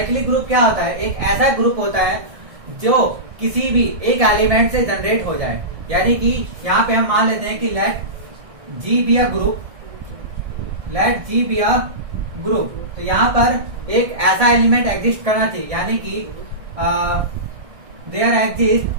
ग्रुप क्या होता है? एक ऐसा ग्रुप होता है जो किसी भी एक एलिमेंट से जनरेट हो जाए। यानी कि यहाँ पे हम मान लेते हैं कि let G be a group, let G be a group. तो यहाँ पर एक ऐसा एलिमेंट एग्जिस्ट करना चाहिए, यानी कि there exist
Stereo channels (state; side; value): late; left; 1.6 ms